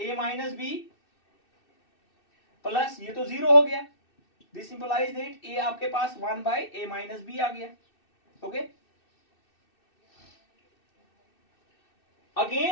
minus b plus, ये तो 0 हो गया, दिस इंप्लाइज दैट a आपके पास 1/a माइनस बी आ गया, ओके।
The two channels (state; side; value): late; right; 2.6 ms